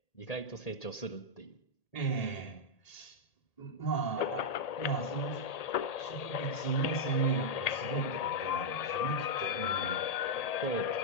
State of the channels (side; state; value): right; late; 1.8 ms